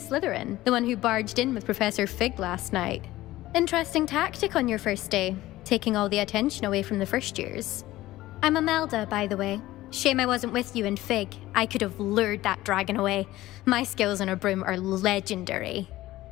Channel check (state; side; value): quieter; right; 16.5 dB